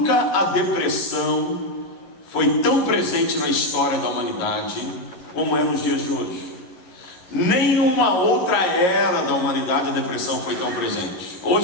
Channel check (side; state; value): right; late; 11 ms